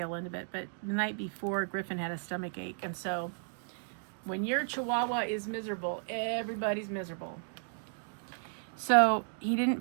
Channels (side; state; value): left; silent; digital silence